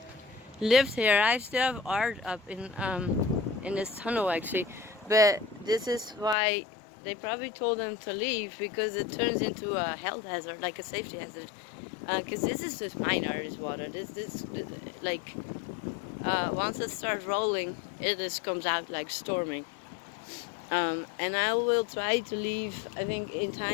lived here. I still have art up in this tunnel actually, but this is why they probably told them to leave, because it turns into a health hazard, like a safety hazard. Because this is just minor, this water. This like once it starts rolling, it just comes out like storming. And I will try to leave, I think, in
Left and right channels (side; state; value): right; drops out; at 6.4 s